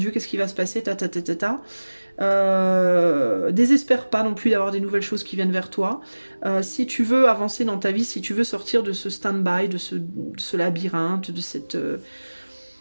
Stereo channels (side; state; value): both; inverted; correlation -1.00